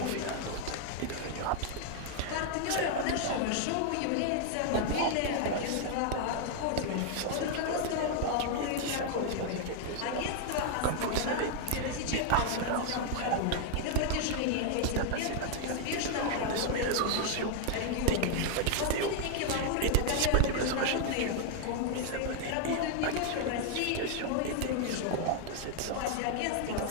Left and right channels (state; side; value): different; both; correlation 0.00